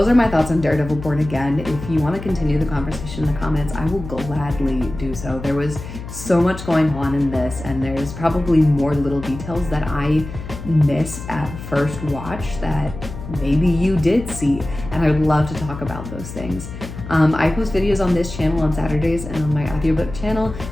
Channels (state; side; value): noise; left; hum, 11 dB below the sound